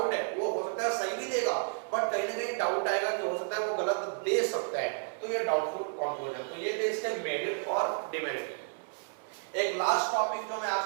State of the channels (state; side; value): silent; left; 57 dB below the other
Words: है, वो हो सकता है सही भी देगा, बट कहीं ना कहीं डाउट आएगा कि हो सकता है वो गलत दे सकता है, तो ये डाउटफुल कंक्लूजन। तो ये थे इसके मेरिट और डिमेरिट। एक लास्ट टॉपिक जो मैं